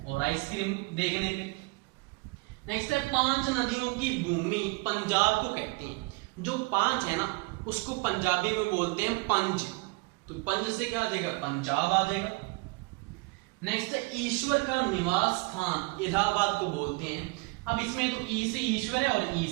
और आइसक्रीम देखने पे। नेक्स्ट है 5 नदियों की भूमि पंजाब को कहते हैं। जो 5 है ना उसको पंजाबी में बोलते हैं पंज, तो पंज से क्या आ जाएगा पंजाब आ जाएगा। नेक्स्ट है ईश्वर का निवास स्थान इलाहाबाद को बोलते हैं। अब इसमें तो ई से ईश्वर है और ई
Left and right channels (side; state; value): left; quieter; 26.4 dB